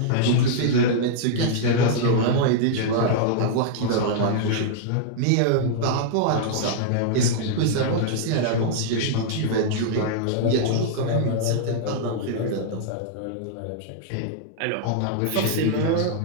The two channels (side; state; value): both; different; correlation -0.01